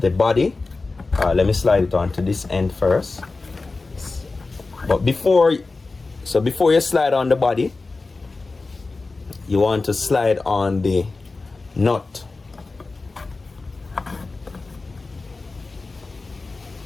body. Let me slide it onto this end first. But before you slide on the body, you want to slide on the nut.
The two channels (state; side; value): quieter; right; 3.7 dB